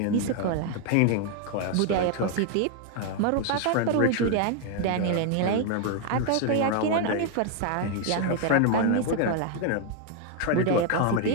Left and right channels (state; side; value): different; both; correlation 0.01